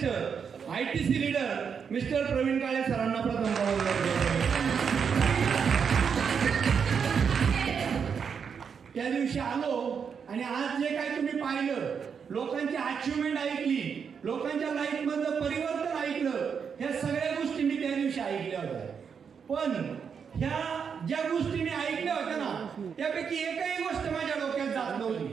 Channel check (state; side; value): quieter; left; 6.7 dB